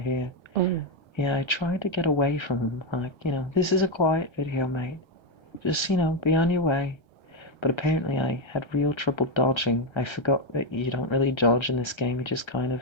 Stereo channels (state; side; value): late; right; 1.3 ms